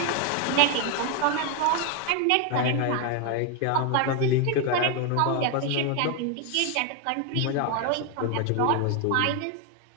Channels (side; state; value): both; different; correlation 0.01